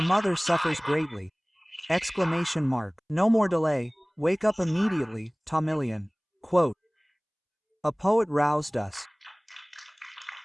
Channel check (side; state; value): both; identical; correlation 1.00